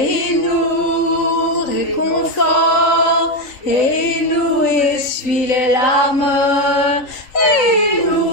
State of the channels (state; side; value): late; right; 3.5 ms